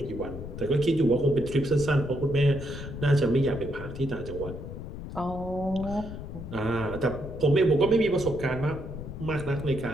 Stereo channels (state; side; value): noise; left; rumble, 9 dB below the sound